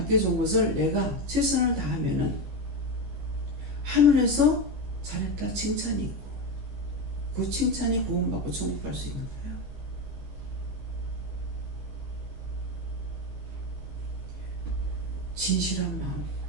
것을 내가 최선을 다하면은 하늘에서 잘했다 칭찬이 있고 그 칭찬이 구원받고 천국 갈 수 있는 거예요. 진실한 마음,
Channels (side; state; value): left; late; 15 ms